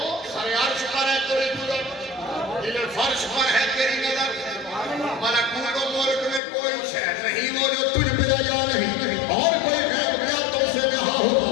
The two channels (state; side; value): drops out; right; at 6.4 s